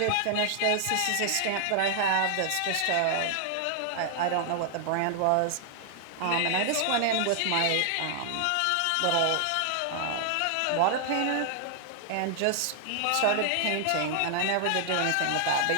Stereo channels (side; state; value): both; different; correlation 0.00